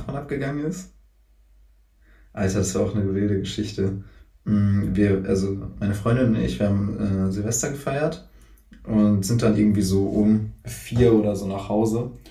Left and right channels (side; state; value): both; identical; correlation 1.00